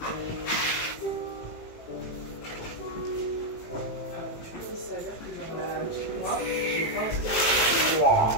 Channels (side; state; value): right; late; 18 ms